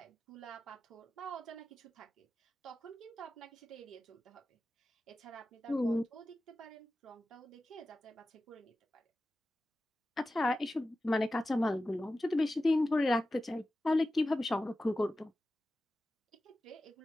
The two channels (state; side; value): normal; both; correlation 0.94